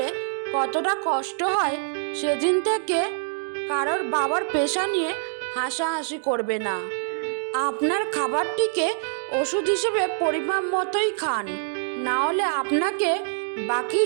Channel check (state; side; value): silent; left; digital silence